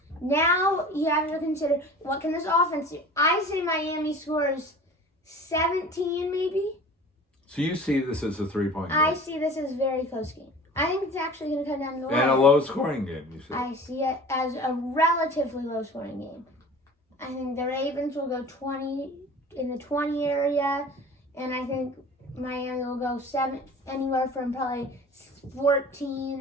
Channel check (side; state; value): both; normal; correlation 0.41